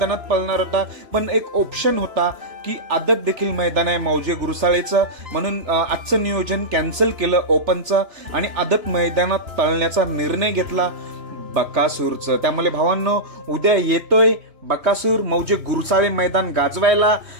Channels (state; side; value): late; left; 3.3 ms